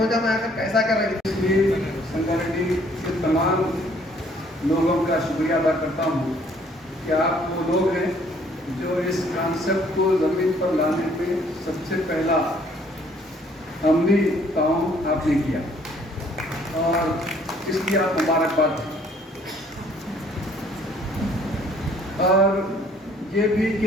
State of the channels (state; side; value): normal; both; correlation 0.61